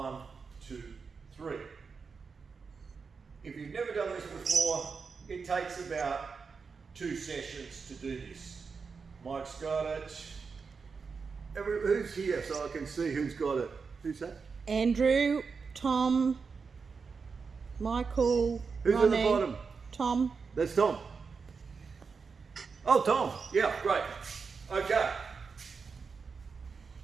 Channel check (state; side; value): quieter; left; 5.2 dB